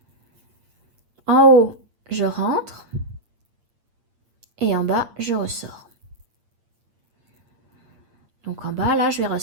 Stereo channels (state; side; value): late; left; 8.8 ms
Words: En haut, je rentre. et en bas, je ressors. Donc en bas, là, je vais